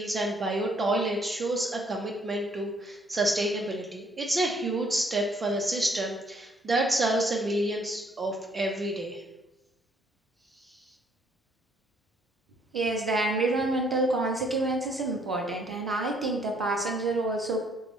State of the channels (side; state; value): both; normal; correlation 0.65